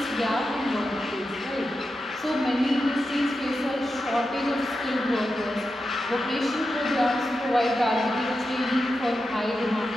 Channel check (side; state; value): both; normal; correlation 0.89